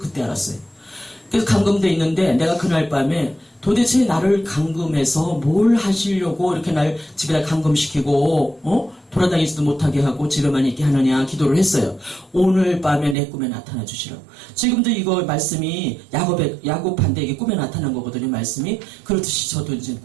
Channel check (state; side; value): drops out; left; at 13.2 s